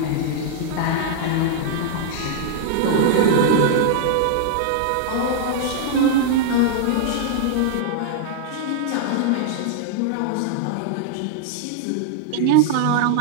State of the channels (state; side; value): different; both; correlation -0.01